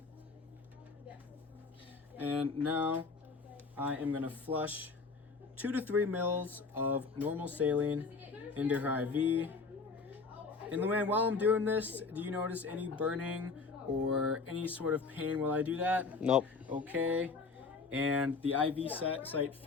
And now I am going to flush 2 to 3 mils of normal saline into her IV. And Luann, while I'm doing this, do you notice any burning or any sort of pain while I do that? Nope. Okay. And the IV site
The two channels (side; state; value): right; quieter; 4.5 dB